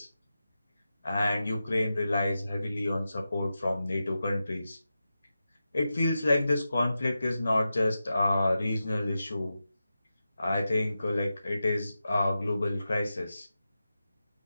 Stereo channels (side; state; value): both; inverted; correlation -0.91